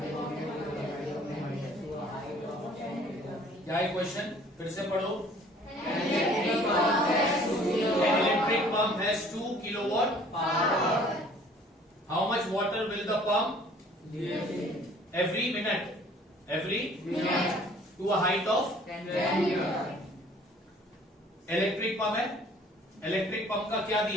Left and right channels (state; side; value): normal; both; correlation 0.54